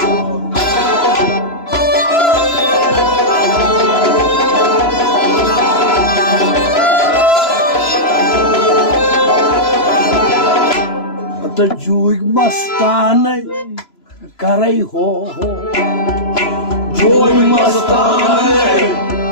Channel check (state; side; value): late; right; 3.0 ms